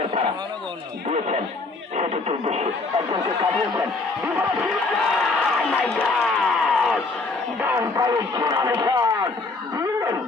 পাড়া দিয়েছেন সেটির উদ্দেশ্যে একজনকে কাটিয়েছেন ডান পায়ে চূড়ানো শট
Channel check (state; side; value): quieter; right; 3.6 dB